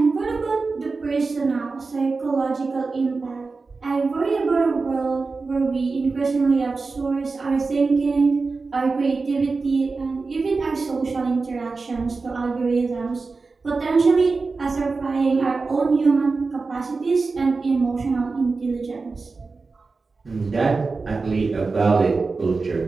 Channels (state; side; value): quieter; left; 4.1 dB